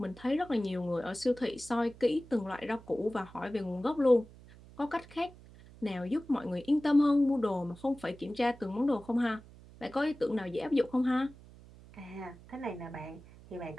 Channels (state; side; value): noise; right; hum, 21 dB below the sound